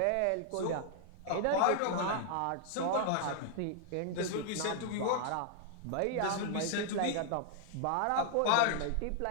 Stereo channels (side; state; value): both; different; correlation 0.00